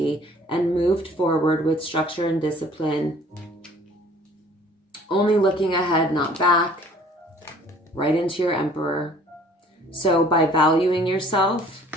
and moved forward with structure and discipline. Only looking ahead, not back. Right into your Emperor. So by valuing yourself,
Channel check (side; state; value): both; normal; correlation 0.53